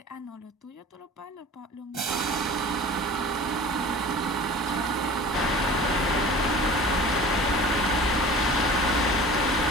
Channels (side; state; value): both; normal; correlation 0.40